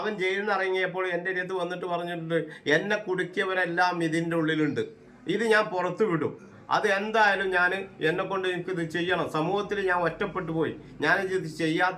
ജയിലിൽ നിന്ന് ഇറങ്ങിയപ്പോൾ എൻ്റെ അടുത്ത് വന്നിട്ട് പറഞ്ഞിട്ടുണ്ട്, എന്നെ കുടുക്കിയവരെല്ലാം ഇതിൻ്റെ ഉള്ളിലുണ്ട്, ഇത് ഞാൻ പുറത്തു വിടും, അത് എന്തായാലും എന്നെ കൊണ്ട് എനിക്കിത് ചെയ്യണം, സമൂഹത്തിൽ ഞാൻ ഒറ്റപ്പെട്ടു പോയി, ഞാനിത്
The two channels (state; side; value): identical; both; correlation 1.00